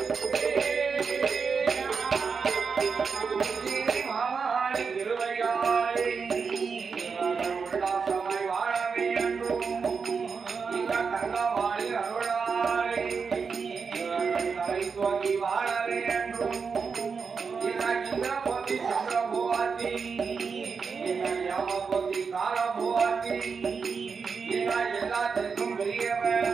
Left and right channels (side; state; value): left; quieter; 5.5 dB